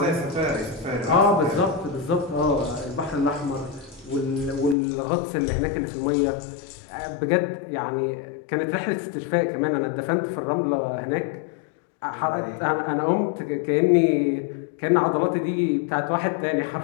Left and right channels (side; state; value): right; drops out; at 4.8 s